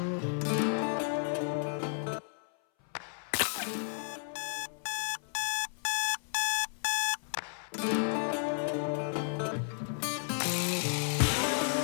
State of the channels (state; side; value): silent; right; 56 dB below the other